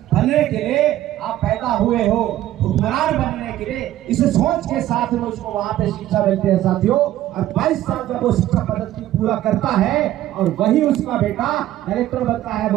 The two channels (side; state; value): left; quieter; 13.8 dB